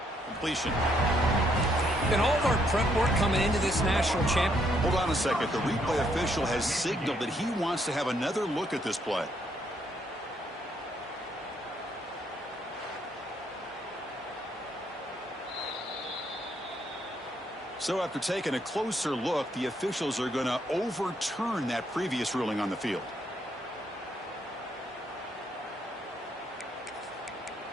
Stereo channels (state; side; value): normal; both; correlation 0.72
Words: Completion. And all of our prep work coming into this national champion. Hold on a second. The replay official has signaled that he wants to have another look at this play. So after taking a closer look, the officials are going to overturn that previous ruling on the field.